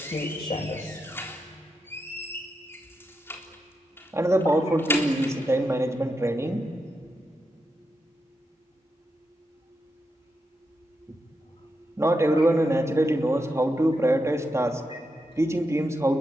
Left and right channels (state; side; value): normal; both; correlation 0.85